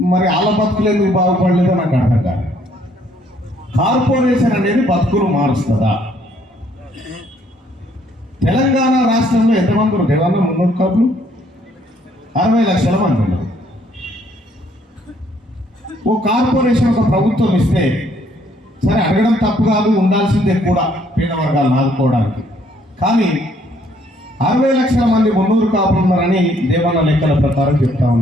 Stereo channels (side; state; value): both; normal; correlation 0.66